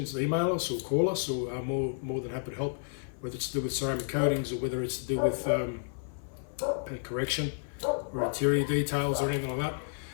email us or call us, or more than happy to help, whether it's to do with ceramic coatings or whether it's to do with paint correction or interior details or anything like that.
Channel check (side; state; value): right; silent; 57 dB below the other